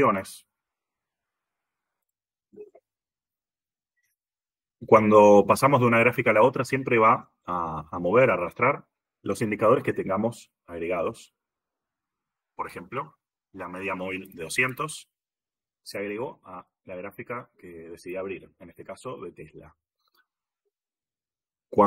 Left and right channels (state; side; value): identical; both; correlation 1.00